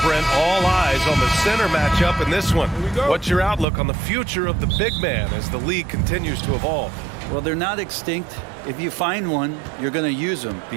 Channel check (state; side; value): drops out; left; at 3.7 s